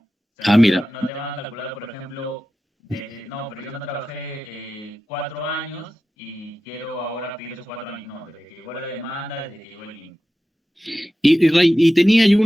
O sea, Ah, mira. no te van a calcular, por ejemplo, no, pero yo no trabajé 4 años y quiero ahora pedir esos 4 años. No, desde que llegó la demanda, desde que llegó el link. Ray, y tenía yo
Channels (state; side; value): normal; both; correlation 0.93